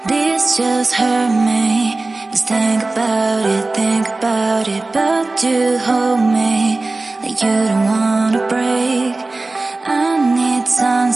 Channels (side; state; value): left; quieter; 3.2 dB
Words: This just hurt me. Just think about it, but you hold me like you don't wanna break. I need some